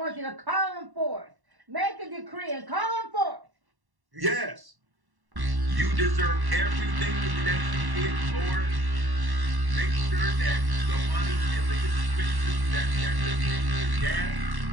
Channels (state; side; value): late; left; 1.1 ms